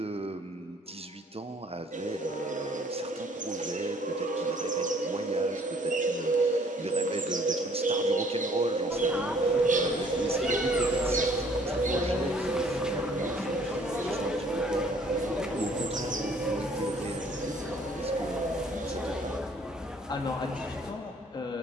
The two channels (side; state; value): both; normal; correlation 0.59